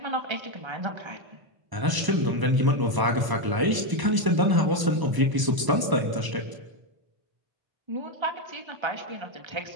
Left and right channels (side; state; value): left; late; 1.0 ms